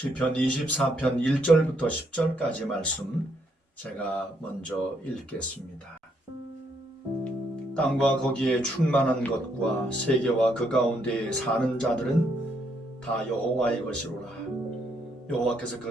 24편 1절부터 10절까지 말씀 제가 먼저 읽겠습니다. 땅과 거기에 충만한 것과 세계와 그 가운데에 사는 자들은 다 여호와의 것이로라. 여호와께서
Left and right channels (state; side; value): normal; both; correlation 0.73